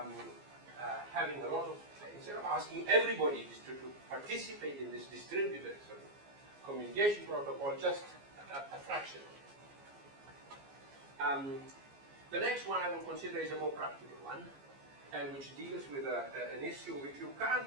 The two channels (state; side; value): late; left; 15 ms